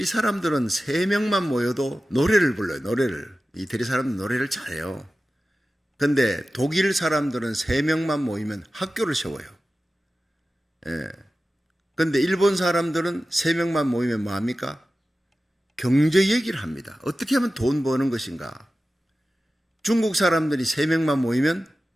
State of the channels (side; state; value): both; normal; correlation 0.95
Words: 사람들은 3명만 모여도 노래를 불러요. 노래를. 이태리 사람들은 노래를 잘해요. 근데 독일 사람들은 3명만 모이면 학교를 세워요. 근데 일본 사람들은 3명만 모이면 뭐합니까? 경제 얘기를 합니다. 어떻게 하면 돈 버는 것인가? 중국 사람들이 3명만 모이면